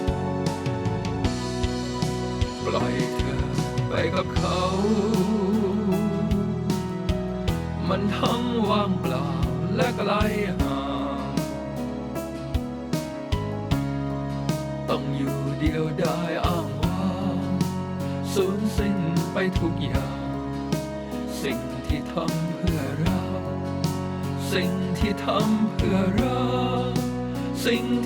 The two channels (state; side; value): identical; both; correlation 1.00